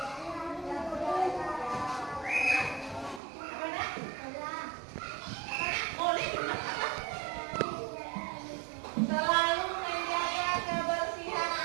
Apa nak? Boleh juga apa? Selalu menjaga kebersihan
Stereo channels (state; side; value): drops out; left; at 3.2 s